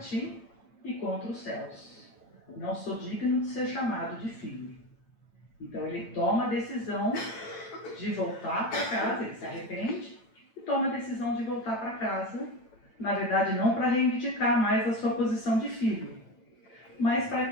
e contra os céus. Não sou digno de ser chamado de filho. Então ele toma a decisão de voltar para casa, ele se arrepende e toma a decisão de voltar para casa, na verdade não para reivindicar mais a sua posição de filho, mas para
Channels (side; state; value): right; late; 8.9 ms